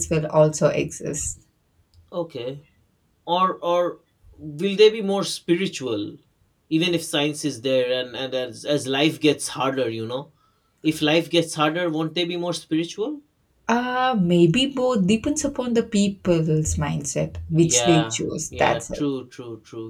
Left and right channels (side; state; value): both; identical; correlation 1.00